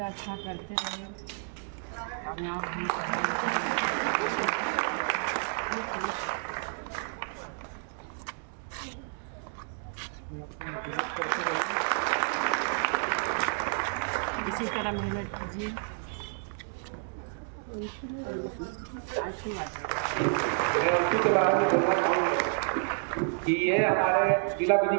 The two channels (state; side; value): silent; left; 58 dB below the other